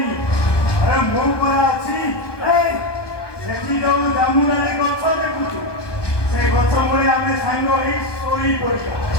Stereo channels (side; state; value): right; late; 1.2 ms